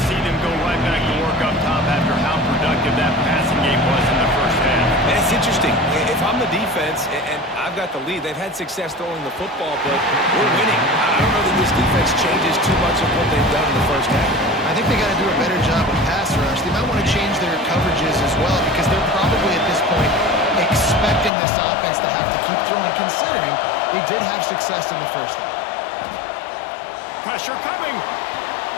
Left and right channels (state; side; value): drops out; right; at 21.3 s